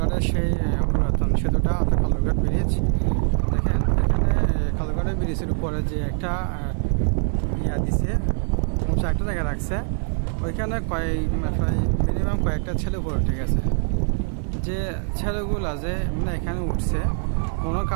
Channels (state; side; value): silent; left; 57 dB below the other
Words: সেই পুরাতন সেতুটা অর্থাৎ খালুরঘাট ব্রিজ। দেখেন এখানে খালুরঘাটের ব্রিজের উপরে যে একটা ইয়া দিছে, উঁচা একটা জায়গা রাখছে, ওইখানে প্রায় মিনিমাম কয়েকটা ছেলে উপরে উঠে গেছে। যে ছেলেগুলা যে মানে এখানে উঠছে কোনো